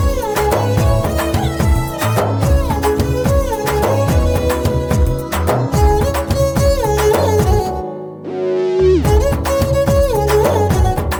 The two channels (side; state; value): both; identical; correlation 1.00